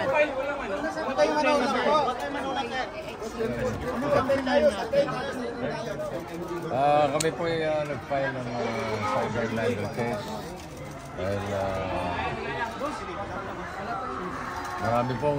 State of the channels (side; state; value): both; identical; correlation 1.00